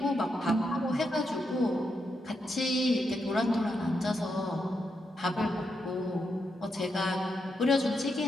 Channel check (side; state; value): both; normal; correlation 0.83